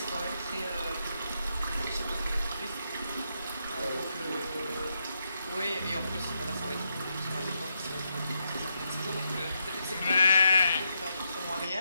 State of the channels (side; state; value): both; inverted; correlation -0.82